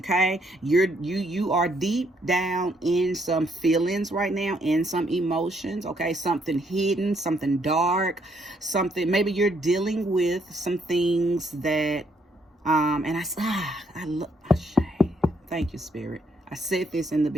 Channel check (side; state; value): both; normal; correlation 0.71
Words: you are deep down in some feelings right now, in some emotions. Okay, something hidden, something dark, something, maybe you're dealing with some things that And thank you, Spirit. I said this in the